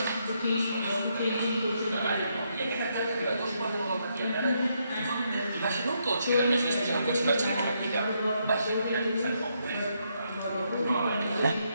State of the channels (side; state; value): both; inverted; correlation -0.77